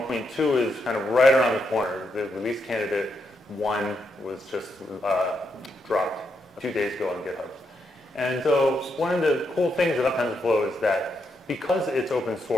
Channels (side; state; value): both; normal; correlation 0.81